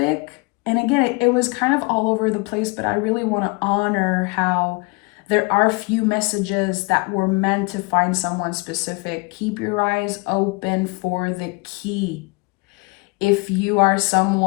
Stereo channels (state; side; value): quieter; right; 28.0 dB